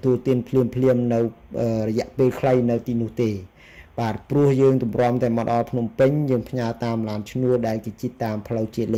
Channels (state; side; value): identical; both; correlation 1.00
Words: ទួលទានភ្លាមនៅរយៈពេលខ្លីនៅទីនោះទេបាទព្រោះយើងទម្រាំតែមកដល់ភ្នំពេញយើងផ្ញើតាមឡានឈ្នួលដែលគេជិះតាមផ្លូវជាតិល